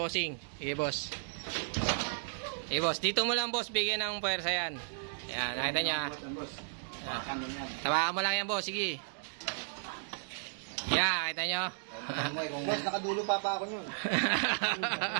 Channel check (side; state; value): left; silent; digital silence